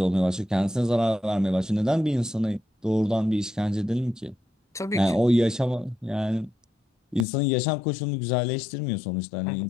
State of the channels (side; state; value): right; drops out; at 7.2 s